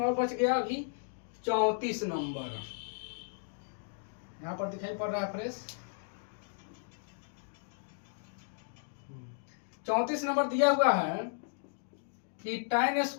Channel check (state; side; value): silent; right; digital silence